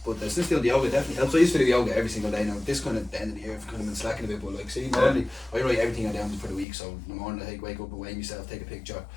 but still doing the yoga definitely helps. I used to do yoga every single day now. This kind of the end of the year, I've kind of been slacking a bit, but like see, normally I write everything I down for the week. So in the morning I wake up and weigh myself, take a picture,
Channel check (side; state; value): right; drops out; at 6.7 s